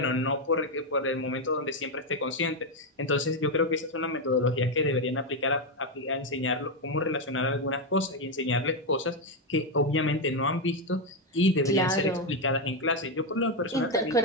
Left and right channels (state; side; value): normal; both; correlation 0.05